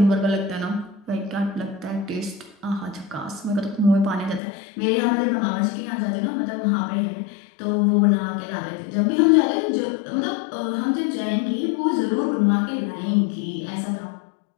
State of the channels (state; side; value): drops out; right; at 4.4 s